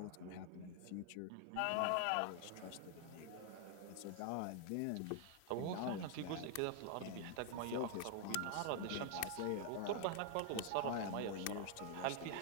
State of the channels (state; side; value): different; both; correlation 0.00